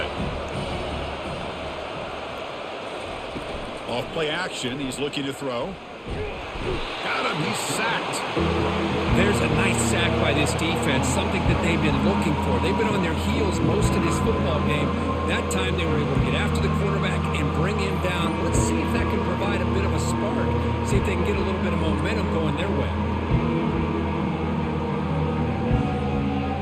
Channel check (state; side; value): identical; both; correlation 1.00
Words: Off play action. He's looking to throw. Got him. He's sacked. There's a nice sack by this defense, something that they've been looking for. They've been on their heels most of this football game. That time they were able to get after the quarterback and bring him down. Let's see if that can provide a bit of a spark. See if they can get a little bit of momentum going their way.